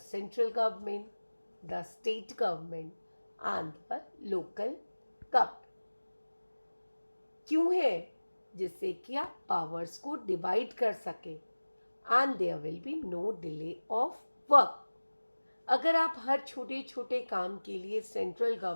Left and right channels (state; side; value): inverted; both; correlation -1.00